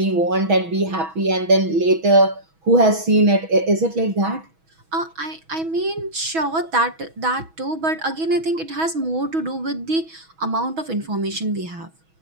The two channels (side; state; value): left; late; 6.2 ms